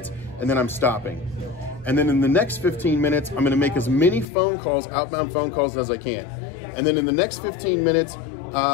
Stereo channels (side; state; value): right; drops out; at 4.2 s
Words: and then I'm stopping. And then in the next 15 minutes, I'm gonna make as many phone calls, outbound phone calls as I can. And then in the next 15 minutes,